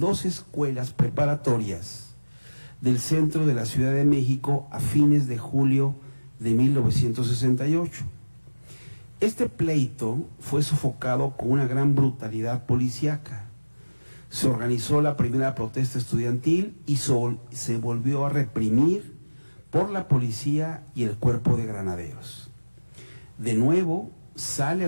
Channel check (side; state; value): both; inverted; correlation -1.00